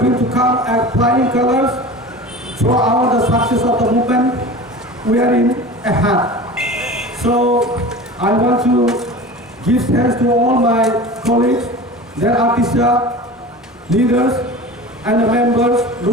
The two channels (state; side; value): normal; both; correlation 0.35